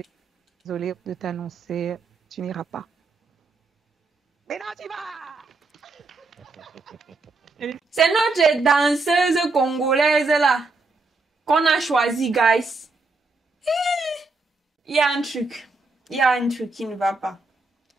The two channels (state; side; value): quieter; left; 3.6 dB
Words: désolée de t'annoncer, tu n'iras pas. Mais non, tu vas! C'est notre danseuse congolaise là qu'on a choisi, guys. Il y a un truc. Il y a un truc qui ne va pas.